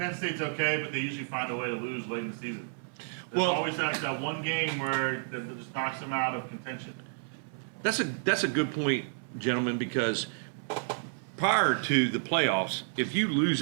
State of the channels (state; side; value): silent; left; 57 dB below the other